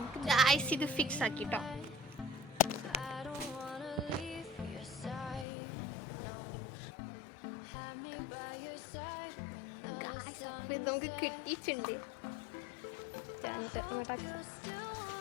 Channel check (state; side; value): drops out; right; at 5.5 s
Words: ഗൈസ് ഇത് ഫിക്സ് ആക്കിട്ടോ. നമുക്ക് കിട്ടിയിട്ടുണ്ട്.